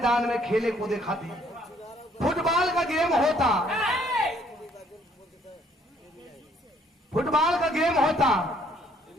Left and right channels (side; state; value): both; normal; correlation 0.64